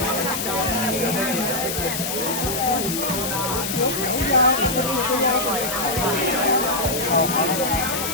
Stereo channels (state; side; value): noise; left; hiss, 3 dB below the sound